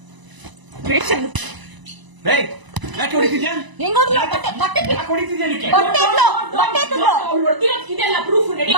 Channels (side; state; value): left; late; 1.0 ms